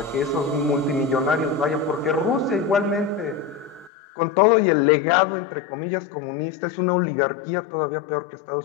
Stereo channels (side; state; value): right; drops out; at 3.9 s